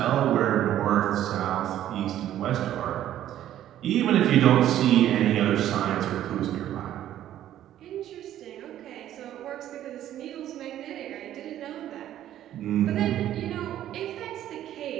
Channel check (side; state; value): left; quieter; 12.1 dB